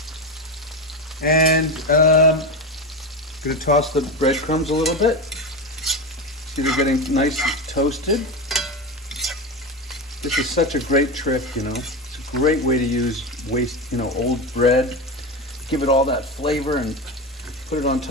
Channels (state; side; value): normal; both; correlation 0.18